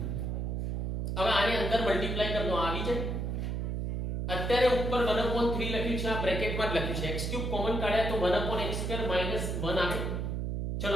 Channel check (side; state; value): right; noise; hum, 1 dB below the sound